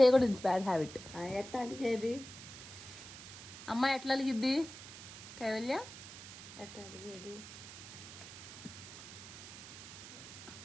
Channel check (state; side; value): noise; right; hiss, 13 dB below the sound